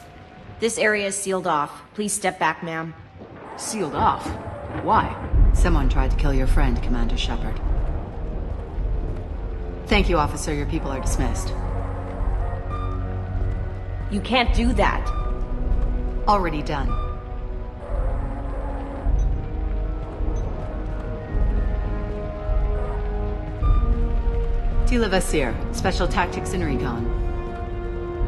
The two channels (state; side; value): identical; both; correlation 1.00